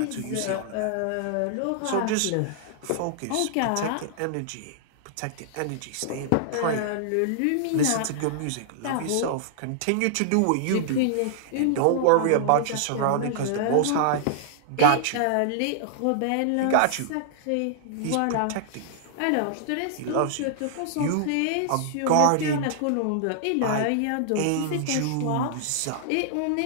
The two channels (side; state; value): both; different; correlation -0.01